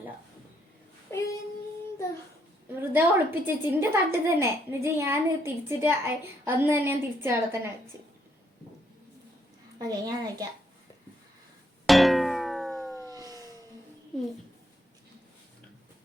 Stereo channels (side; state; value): both; normal; correlation 0.73